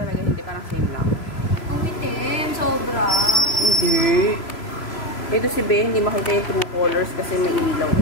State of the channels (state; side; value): late; right; 3.0 ms